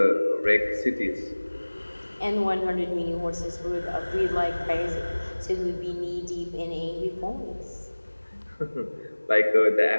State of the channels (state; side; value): inverted; both; correlation -1.00